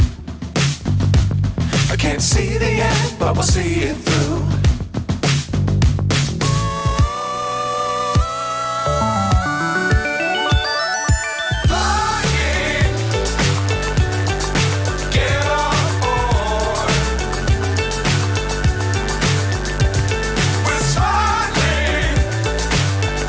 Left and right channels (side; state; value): both; identical; correlation 1.00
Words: I can't see the end, but we'll see it through.